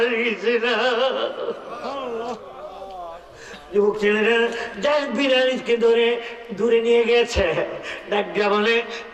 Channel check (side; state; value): both; identical; correlation 1.00